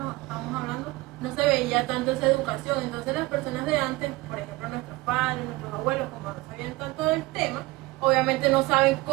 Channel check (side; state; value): left; quieter; 21.0 dB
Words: hablando, no se veía tanto esa educación. Entonces las personas de antes, por ejemplo nuestros padres, nuestros abuelos, como no sabían tanto del tema, obviamente no saben